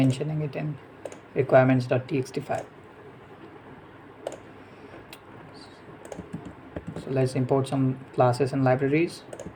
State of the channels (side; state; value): both; identical; correlation 1.00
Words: it in requirements.txt file. So let's import some classes and libraries